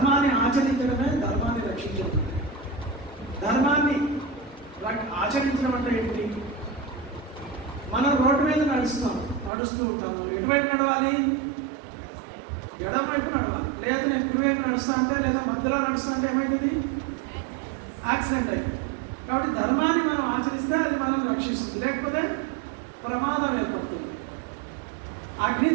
ఆచరించడమే ధర్మాన్ని రక్షించడం. ధర్మాన్ని ఆచరించడం అంటే ఏంటి? మనం రోడ్డు మీద నడుస్తూ ఉంటాము. ఎటువైపు నడవాలి? ఎడమ వైపు నడవాలి. లేదా నేను కుడివైపు నడుస్తా అంటే లేదా మధ్యలో నడుస్తా అంటే ఏమైతుంది? యాక్సిడెంట్ అయింది. కాబట్టి ధర్మాన్ని మనం ఆచరిస్తే అది మనం రక్షిస్తుంది, లేకపోతే ప్రమాదం ఏర్పడుతుంది. అగ్ని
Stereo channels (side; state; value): left; drops out; at 9.5 s